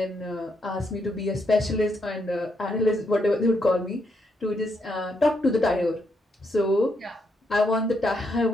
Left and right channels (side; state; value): both; normal; correlation 0.78